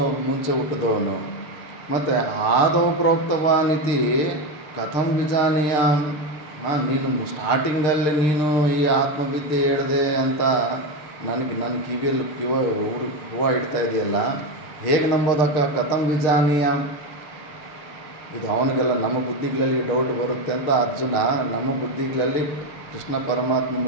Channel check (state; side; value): late; right; 6.6 ms